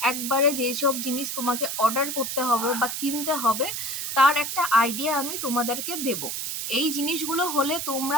একবারে যেসব জিনিস তোমাকে অর্ডার করতে হবে বা কিনতে হবে তার একটা আইডিয়া আমি তোমাদেরকে দেব। এই জিনিসগুলো হলে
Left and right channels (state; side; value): noise; right; hiss, 4 dB below the sound